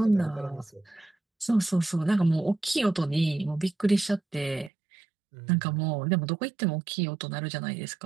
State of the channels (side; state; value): left; drops out; at 4.7 s